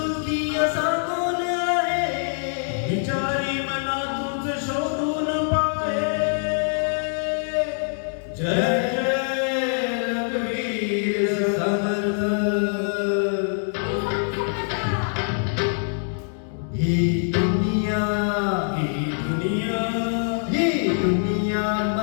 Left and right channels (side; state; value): right; silent; digital silence